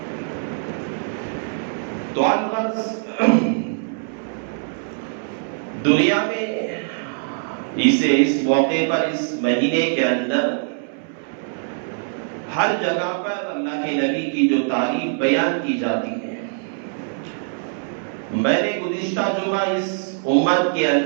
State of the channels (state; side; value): silent; left; 64 dB below the other